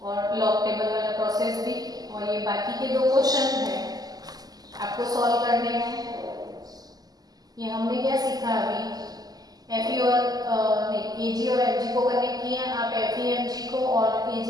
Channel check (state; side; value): late; left; 0.18 ms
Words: और लॉग टेबल वाला प्रोसेस भी। और ये बाकी के 2 क्वेश्चन हैं आपको सॉल्व करने हैं। ये हमने क्या सीखा अभी, एफई और एजी और एमजी को कनेक्ट किया। आप एफई एमजी को और